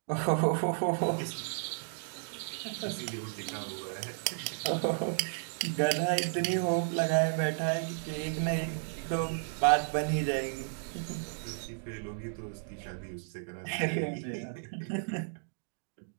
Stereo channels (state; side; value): silent; left; digital silence